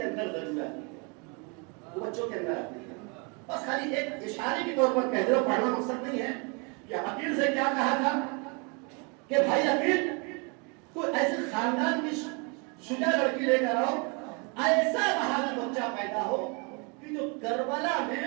اندر ضرور آتی ہے، وہ بچوں کے اندر آتی ہے. بس خالی ایک اشارے کے طور پر کہہ دو، پڑھنا مقصد نہیں ہے. کہ عقیل سے کیا کہا تھا کہ بھائی عقیل کوئی ایسے خاندان کی شجاع لڑکی لے کر آؤ، ایسا بہادر بچہ پیدا ہو کہ جو کربلا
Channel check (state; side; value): quieter; left; 33.2 dB